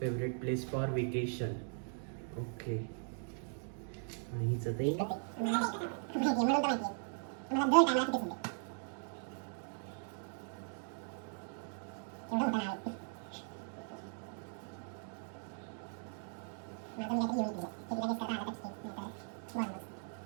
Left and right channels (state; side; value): silent; left; 52 dB below the other